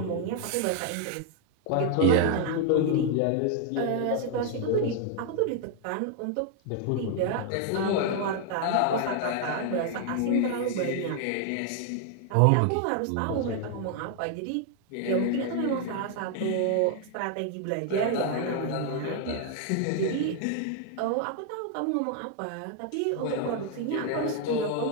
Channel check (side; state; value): both; different; correlation 0.00